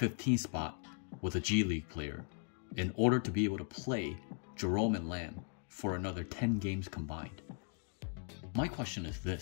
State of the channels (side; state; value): right; quieter; 36.9 dB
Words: spot with a G League player in order to be able to play Jerome and Lamb for another 10 games combined. My question is